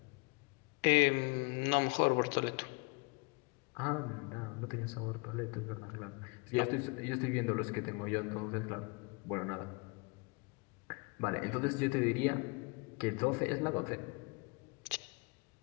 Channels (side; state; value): right; quieter; 30.2 dB